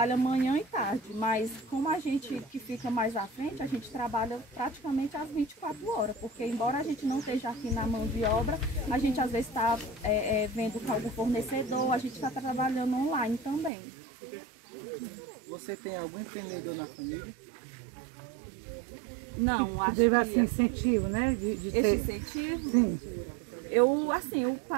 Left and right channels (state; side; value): drops out; left; at 13.7 s